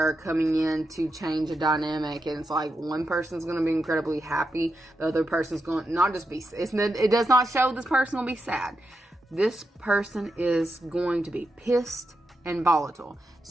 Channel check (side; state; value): both; normal; correlation 0.86